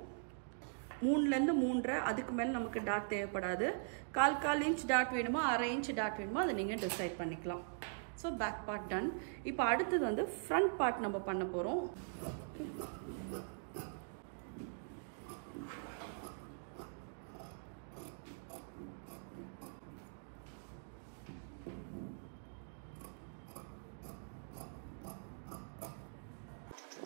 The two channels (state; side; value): silent; left; digital silence